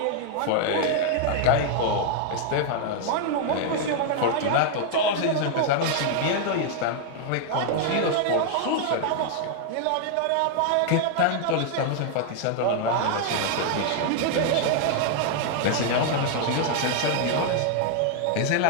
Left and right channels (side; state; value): both; different; correlation 0.00